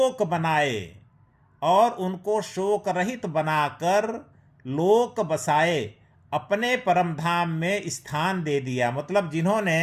बनाए, और उनको शोक रहित बनाकर लोक बसाए, अपने परम धाम में स्थान दे दिया। मतलब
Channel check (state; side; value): identical; both; correlation 1.00